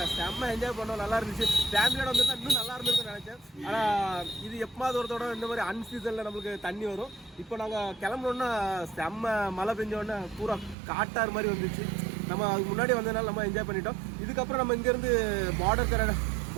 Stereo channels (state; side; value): drops out; left; at 10.8 s